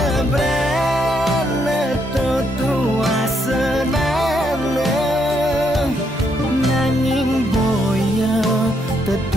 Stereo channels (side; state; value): both; normal; correlation 0.75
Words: brana tua senana, nanging boya